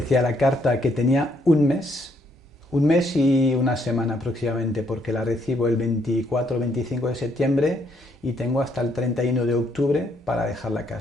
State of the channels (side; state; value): both; normal; correlation 0.71